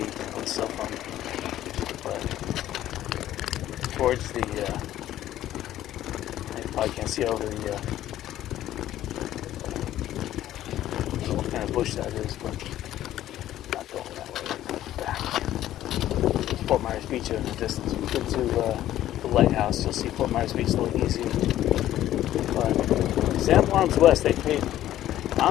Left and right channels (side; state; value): right; quieter; 13.1 dB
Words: on the cell phone, but towards the, I probably can't see over the, I don't know what kind of bush that is, but not going that way. Back. Fort Myers Beach in the distance. If you get to the lighthouse, you'll see Fort Myers Beach a little easier. But Sanibel Arms West, they paid, I